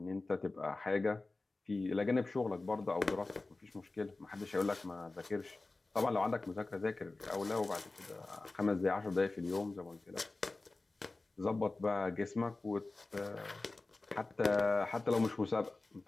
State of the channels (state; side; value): quieter; right; 3.3 dB